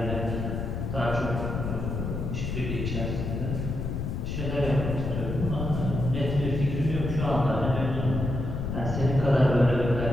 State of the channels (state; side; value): noise; left; rumble, 3 dB below the sound